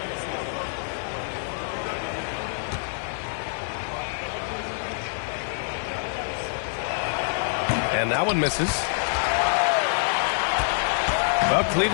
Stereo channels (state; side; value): silent; right; digital silence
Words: And that one misses. Well,